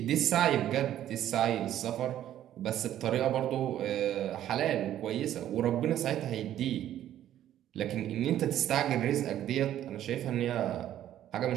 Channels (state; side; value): quieter; left; 11.8 dB